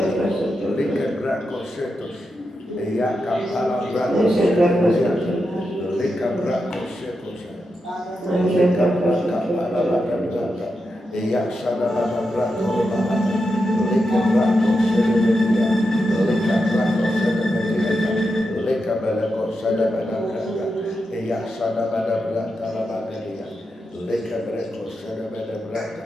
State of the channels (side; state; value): both; normal; correlation 0.87